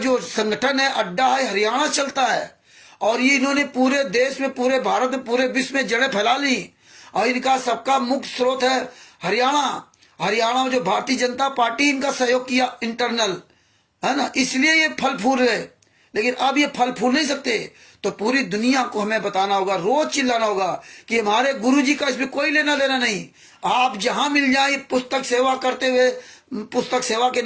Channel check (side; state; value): both; identical; correlation 1.00